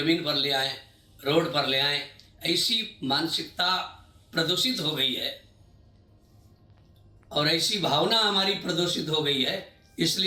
पर ले आएं, रोड पर ले आएं। ऐसी मानसिकता प्रदूषित हो गई है और ऐसी भावना हमारी प्रदूषित हो गई है,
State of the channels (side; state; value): both; identical; correlation 1.00